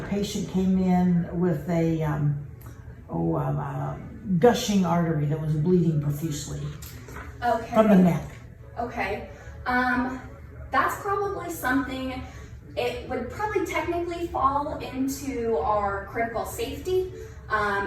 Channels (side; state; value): both; identical; correlation 1.00